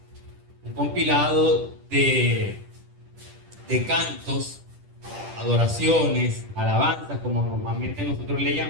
un compilado de cantos, adoraciones, alabanzas, como normalmente nosotros le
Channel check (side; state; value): left; late; 10 ms